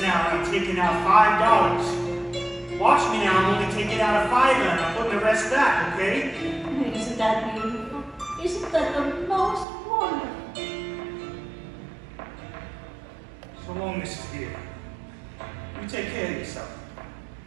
now and I'm taking out $5. Watch me now, I'm only taking out a $5 and I'm putting the rest back, okay? Isn't that beautiful? Isn't that the most wonderful? So long, Mrs. Beale. You take care of yourself.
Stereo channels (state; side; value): drops out; left; at 9.7 s